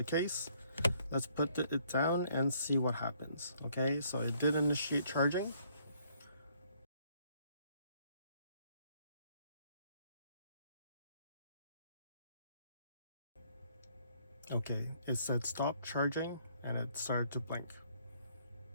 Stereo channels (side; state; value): both; inverted; correlation -0.65